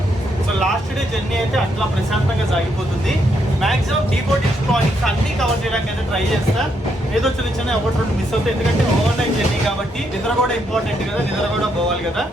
సో లాస్ట్ డే జర్నీ అయితే అట్లా ప్రశాంతంగా సాగిపోతుంది. మాక్సిమం డీబోర్డింగ్ పాయింట్స్ అన్ని కవర్ చేయడానికి అయితే ట్రై చేస్తా. ఏదో చిన్న 1-2 మిస్ అవుతాయి, ఎందుకంటే ఓవర్ నైట్ జర్నీ కాబట్టి నిద్ర కూడా ఇంపార్టెంట్ కదా, నిద్ర కూడా పోవాలి కదా.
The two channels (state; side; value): normal; both; correlation 0.77